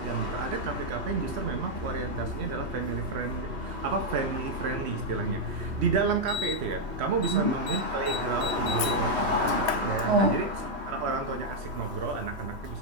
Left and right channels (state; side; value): late; left; 3.1 ms